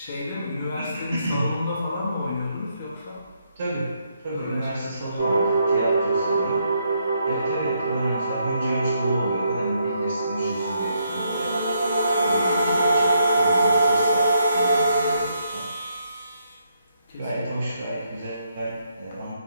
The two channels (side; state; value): both; inverted; correlation -0.76